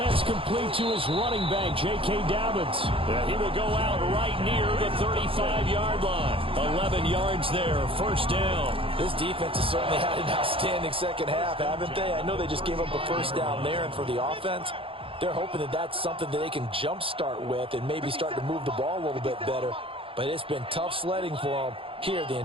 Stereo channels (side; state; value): left; late; 0.26 ms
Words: complete to his running back, J.K. Dobbins. And he will go out right near the 35-yard line. 11 yards there, 1st down. This defense has certainly had an outstanding second half, haven't they? I know they just gave up a 1st down there, and for the offense, They're hoping that that's something that they can jumpstart with and maybe start to move the ball a little bit better. But it's been tough sledding for them here the